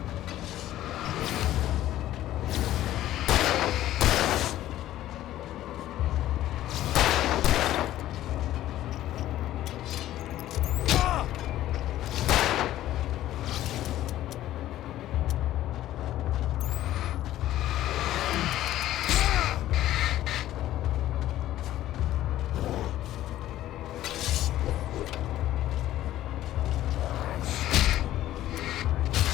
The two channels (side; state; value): right; quieter; 13.8 dB